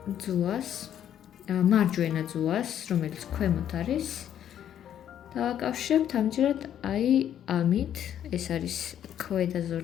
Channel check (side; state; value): right; quieter; 10.2 dB